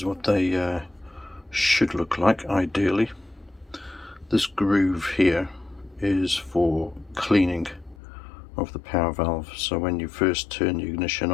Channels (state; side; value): drops out; right; at 8.0 s